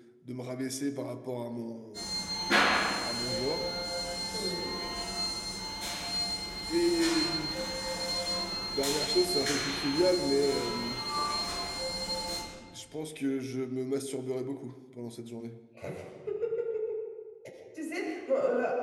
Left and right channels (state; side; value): identical; both; correlation 1.00